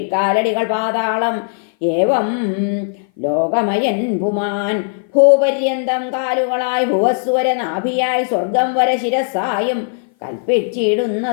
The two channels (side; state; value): right; silent; 58 dB below the other